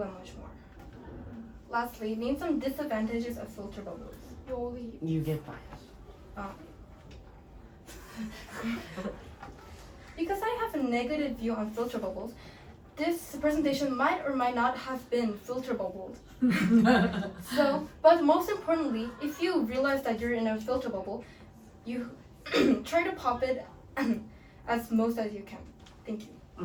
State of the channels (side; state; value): both; identical; correlation 1.00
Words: and much more. Lastly, name some disadvantages of filter bubbles. You get biased. Because I have a negative view on filter bubbles, this presentation might or might not have been filter bubbled. So, but most importantly, if you realize that you're in a filter bubble, you try to pop it as most as you can. Thank you.